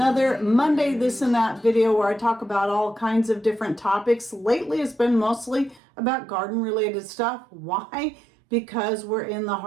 Monday This and That video where I talk about all kinds of different topics. Lately it's been mostly about garden related stuff. Why? Because we're in the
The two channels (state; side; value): drops out; left; at 5.8 s